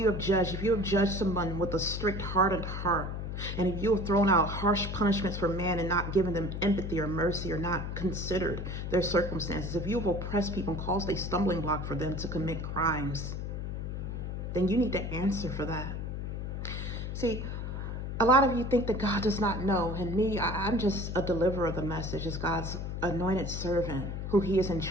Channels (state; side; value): noise; left; hum, 4 dB below the sound